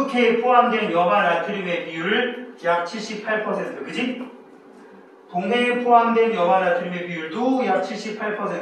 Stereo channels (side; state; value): both; identical; correlation 1.00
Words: 포함된 염화 나트륨의 비율을 약 78%, 그지? 동해에 포함된 염화 나트륨의 비율도 약